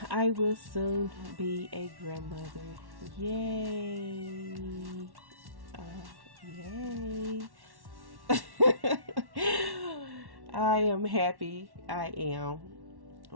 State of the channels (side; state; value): left; late; 1.1 ms